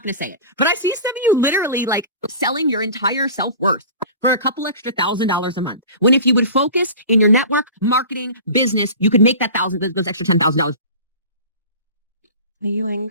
going to say it. But I see some of you literally like selling your entire self-worth for a couple extra $1,000 a month. When if you would focus in your network, marketing, business, you could make that those extra $10,000. Are you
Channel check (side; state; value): both; inverted; correlation -0.37